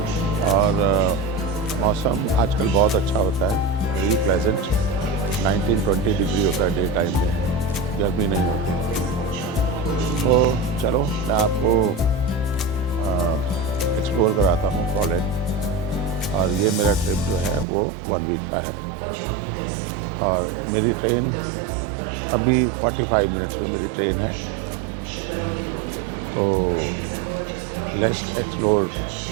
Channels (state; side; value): drops out; left; at 17.7 s